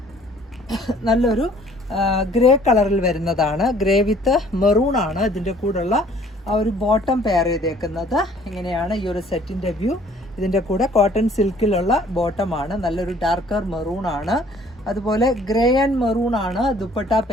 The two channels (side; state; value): both; normal; correlation 0.56